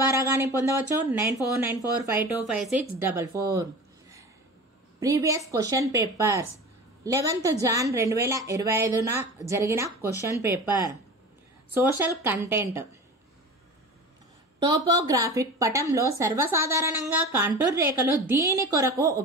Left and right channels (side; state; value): both; normal; correlation 0.34